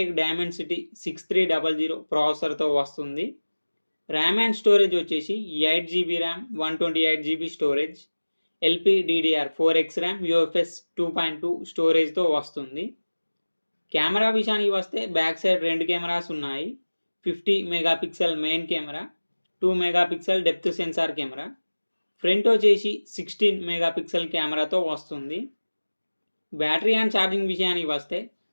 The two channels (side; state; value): both; inverted; correlation -1.00